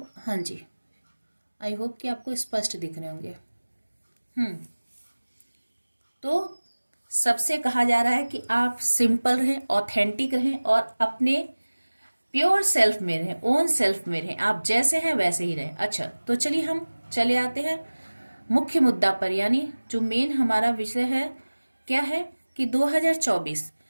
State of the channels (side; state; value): both; inverted; correlation -1.00